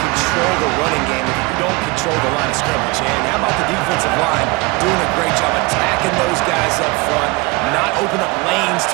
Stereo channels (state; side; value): quieter; left; 26.1 dB